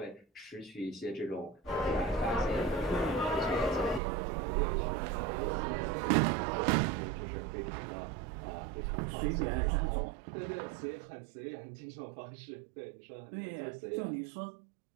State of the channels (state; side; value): drops out; left; at 4.0 s